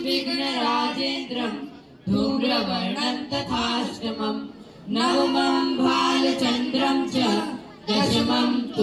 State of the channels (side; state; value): both; identical; correlation 1.00